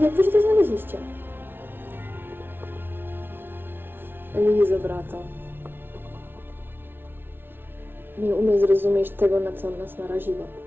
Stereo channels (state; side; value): late; left; 0.10 ms